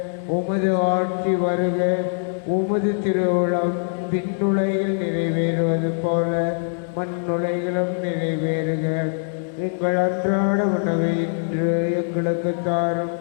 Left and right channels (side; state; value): right; silent; digital silence